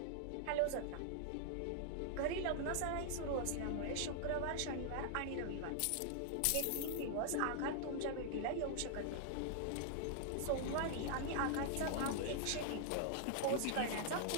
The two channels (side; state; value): both; different; correlation -0.01